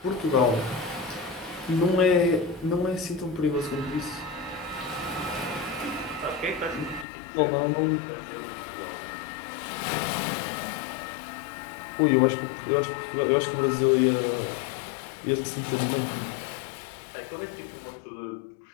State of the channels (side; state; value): right; drops out; at 7.1 s